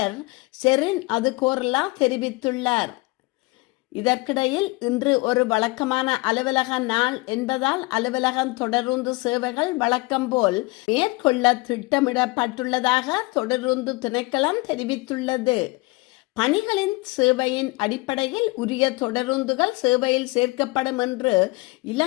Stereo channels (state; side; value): quieter; right; 24.2 dB